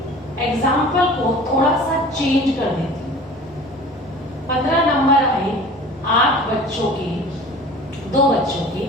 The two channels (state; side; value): noise; left; hum, 25 dB below the sound